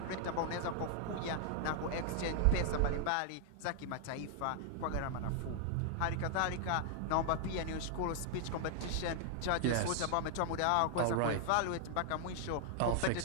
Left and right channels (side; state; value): both; different; correlation 0.00